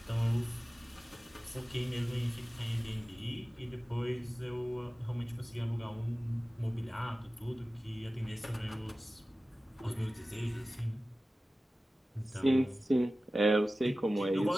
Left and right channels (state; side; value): normal; both; correlation 0.96